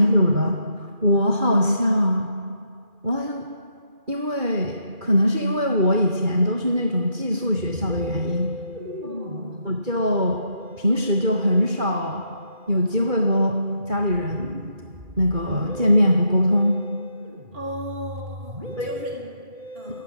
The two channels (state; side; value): late; left; 2.4 ms